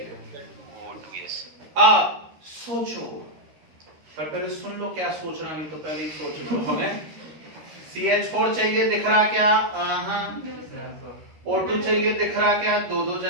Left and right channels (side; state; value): left; late; 13 ms